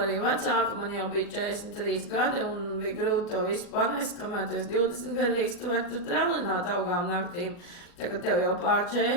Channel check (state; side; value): late; right; 40 ms